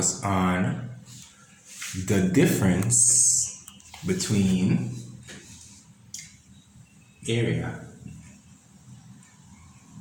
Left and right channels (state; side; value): identical; both; correlation 1.00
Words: on the difference between area